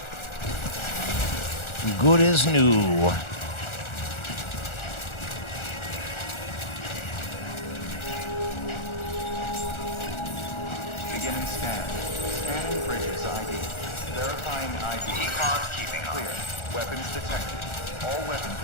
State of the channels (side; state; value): right; late; 1.4 ms